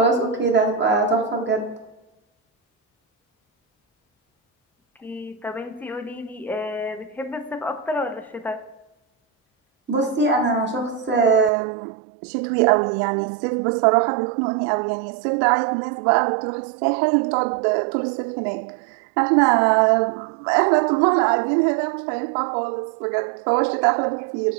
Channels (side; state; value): left; drops out; at 11.5 s